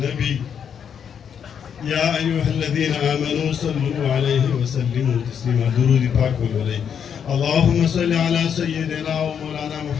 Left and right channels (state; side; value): quieter; right; 7.9 dB